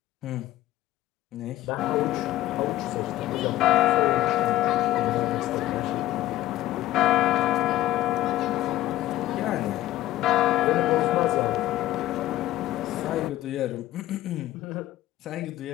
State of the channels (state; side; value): quieter; right; 15.1 dB